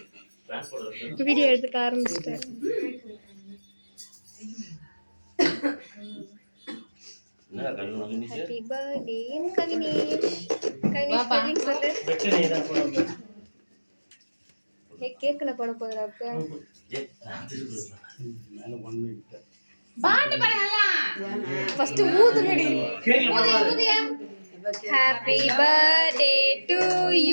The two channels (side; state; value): both; inverted; correlation -1.00